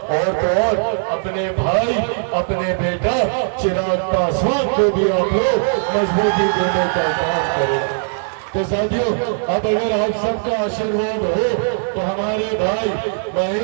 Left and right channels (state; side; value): silent; left; digital silence